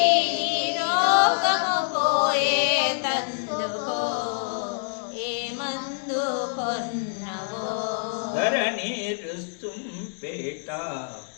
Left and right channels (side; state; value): right; silent; digital silence